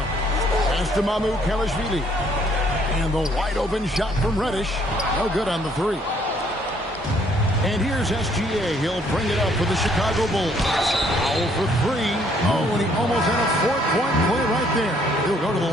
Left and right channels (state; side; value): normal; both; correlation 0.65